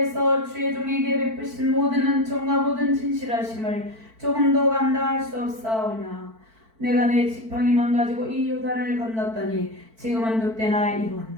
주의 종에게 베푸신 모든 은총과 모든 진실하심을 조금도 감당할 수 없사오나 내가 내 지팡이만 가지고 이 요단을 건넜더니 지금은 늑대나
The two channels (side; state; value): left; late; 4.5 ms